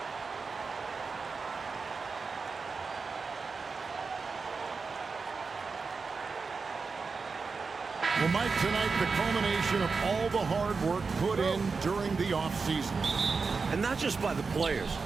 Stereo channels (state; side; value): quieter; left; 4.7 dB